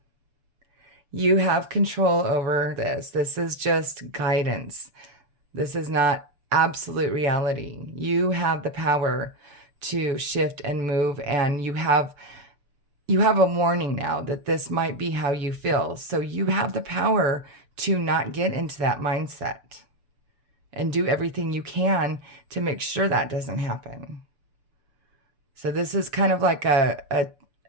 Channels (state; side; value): late; left; 6.9 ms